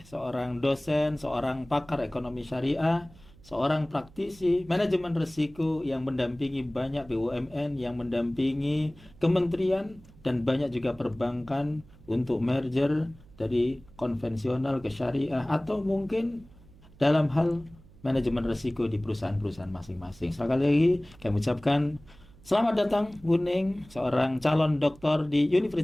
seorang dosen, seorang pakar ekonomi syariah, seorang praktisi manajemen risiko yang mendampingi banyak BUMN, yang mendampingi kementerian dan banyak juga perbankan untuk merger dari konvensional ke syariah atau mungkin dalam hal manajemen risiko di perusahaan-perusahaan masing-masing. Sekali lagi kami ucapkan selamat datang Bu Ning, seorang calon doktor di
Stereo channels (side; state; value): right; noise; hum, 24 dB below the sound